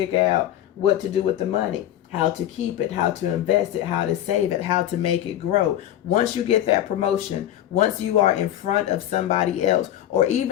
out what to do with the money, how to keep it, how to invest it, how to save it, how to make it grow. Once you get that promotion, once you are in front of somebody else, or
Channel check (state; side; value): quieter; right; 12.2 dB